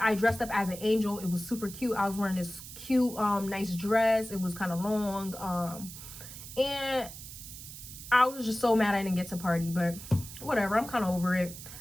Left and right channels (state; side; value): noise; right; hiss, 13 dB below the sound